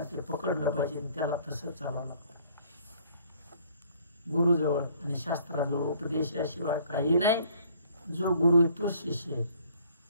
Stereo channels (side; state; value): both; inverted; correlation -0.59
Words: ते पकडलं पाहिजे, त्याला तसंच चालावं लागतं. गुरुजवळ आणि शास्त्राजवळ उपदेशाशिवाय काही नाही. जो गुरु आहे तोच शिष्य आहे.